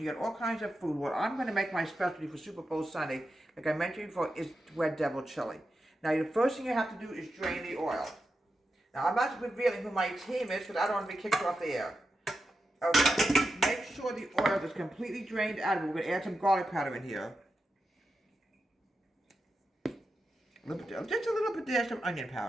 you get all kinds of food. What I'm going to make my specialty for Super Bowl Sunday, like I mentioned before, is Red Devil chili. Now, the first thing you have to do is drain the oil. Now, I'm not revealing who my team is because I don't want to be kicked off the air. Okay, make sure the oil is completely drained out of it. We're going to add some garlic powder in here. Just a little bit dash of onion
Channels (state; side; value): normal; both; correlation 0.89